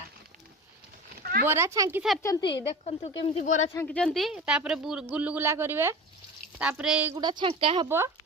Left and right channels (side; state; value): both; normal; correlation 0.32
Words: बोरा छांकी सारचंती देखंतु केमती बोरा छांकीचंती तापरे गुलुगुला करिवे तापरे एगुडा छांका हबो